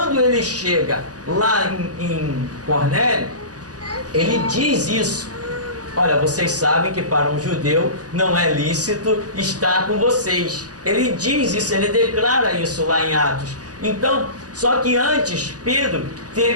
ele chega lá em Cornélio, ele diz isso. Olha, vocês sabem que para um judeu não é lícito estar com vocês. Ele diz isso, ele declara isso lá em Atos. Então, só que antes, Pedro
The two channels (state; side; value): late; left; 0.68 ms